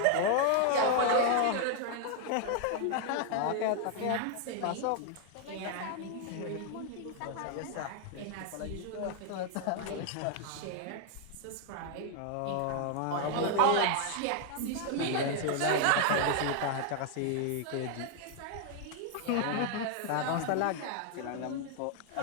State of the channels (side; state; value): both; different; correlation 0.00